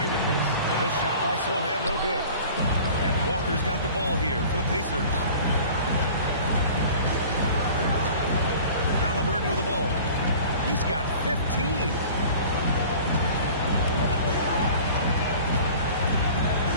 with this. This shot by Sohan, no good. And Walker's got the ball here for the Pacers. Halliburton with the ball. He's got 15.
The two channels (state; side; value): inverted; both; correlation -0.44